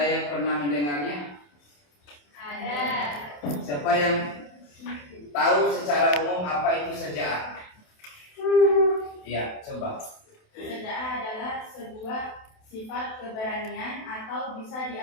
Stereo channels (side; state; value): right; late; 27 ms